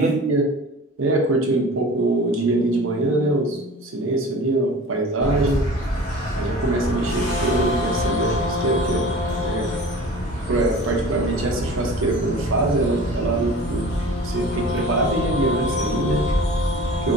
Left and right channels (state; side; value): normal; both; correlation 0.40